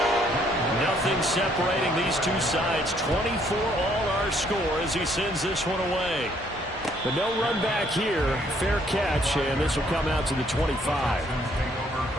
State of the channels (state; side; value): normal; both; correlation 0.66